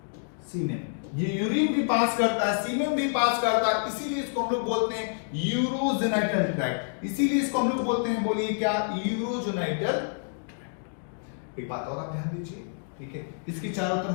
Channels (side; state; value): right; silent; digital silence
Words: semen। ये यूरिन भी पास करता है, सीमेन भी पास करता है, इसीलिए इसको हम लोग बोलते हैं यूरोजेनाइटल ट्रैक्ट। इसीलिए इसको हम लोग बोलते हैं, बोलिए क्या, यूरोजेनाइटल ट्रैक्ट। एक बात और आप ध्यान दीजिए, ठीक है, इसकी चारों